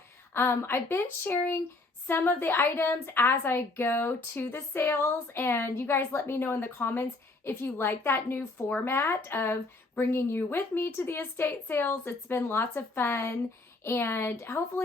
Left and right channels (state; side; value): quieter; right; 3.3 dB